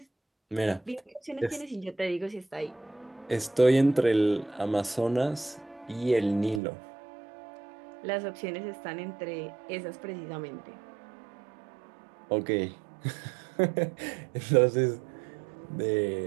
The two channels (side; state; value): left; drops out; at 6.6 s